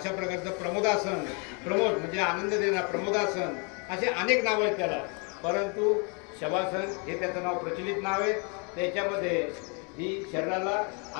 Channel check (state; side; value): quieter; right; 35.1 dB